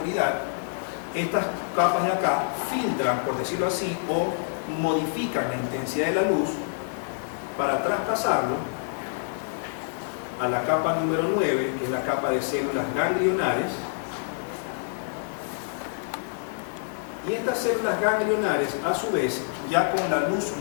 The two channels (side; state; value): right; silent; digital silence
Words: Estas capas de acá filtran, por decirlo así, o modifican la intensidad de la luz para traspasarlo a la capa número 9, que es la capa de células ganglionares. Y estas células ganglionares, a su vez, ya con la luz